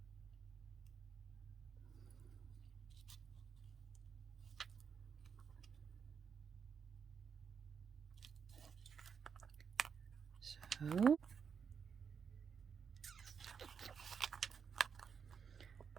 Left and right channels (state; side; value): quieter; left; 6.6 dB